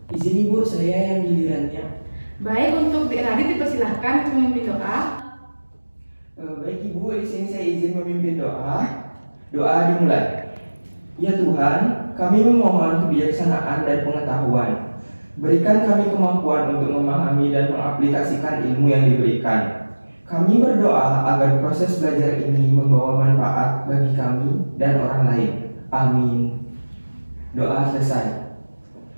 Izin Ibu, saya yang gilirannya. Baik, untuk Radit dipersilahkan untuk memimpin doa. Baik Ibu, di sini saya izin memimpin doa. Doa dimulai. Ya Tuhan, kami memohon kebijaksanaan dan pengetahuan. Berikan kami kemampuan untuk memahami dan mengaplikasikan ilmu yang diberikan. Kami berdoa agar proses belajar ini membawa manfaat bagi kami dan orang lain. Amin. Doa selesai.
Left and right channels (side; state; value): both; inverted; correlation -1.00